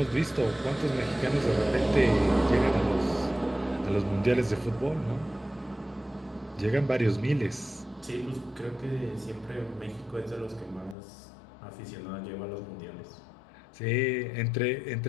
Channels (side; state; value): right; drops out; at 11.0 s